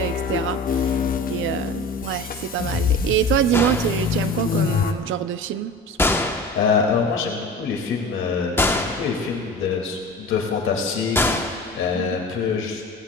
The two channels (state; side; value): normal; both; correlation 0.35